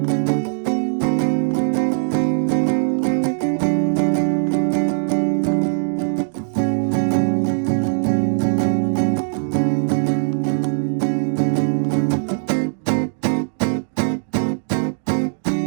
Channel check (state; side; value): silent; left; digital silence